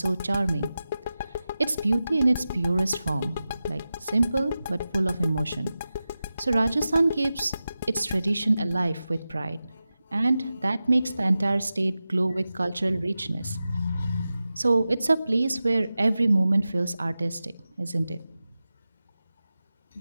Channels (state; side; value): inverted; both; correlation -0.94